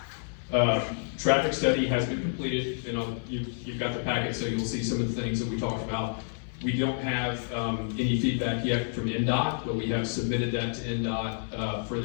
Traffic study has been completed, and you've got the packet, so you'll see some of the things that we talked about. We don't have any feedback yet from NDOT, but we have submitted that to NDOT for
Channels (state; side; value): silent; right; digital silence